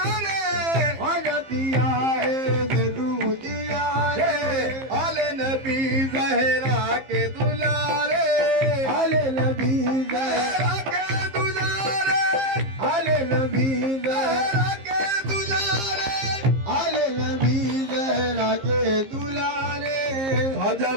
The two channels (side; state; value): left; late; 15 ms